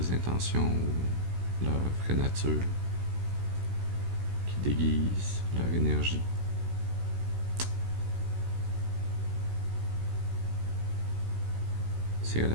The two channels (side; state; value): left; late; 16 ms